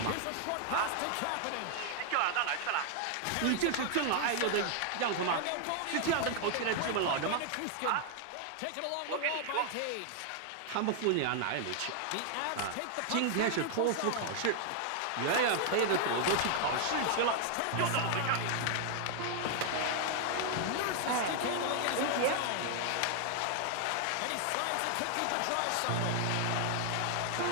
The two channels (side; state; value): both; different; correlation 0.00